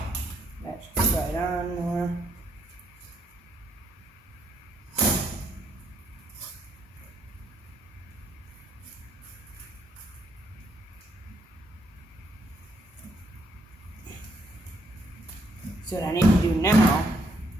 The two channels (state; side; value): normal; both; correlation 0.73